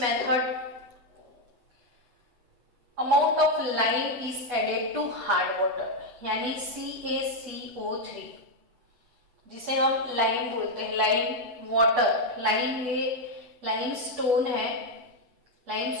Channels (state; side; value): late; left; 8.3 ms